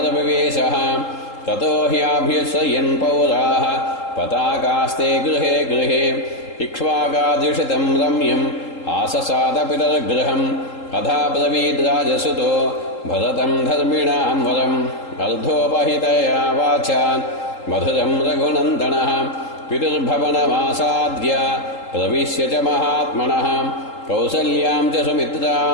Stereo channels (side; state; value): right; late; 3.8 ms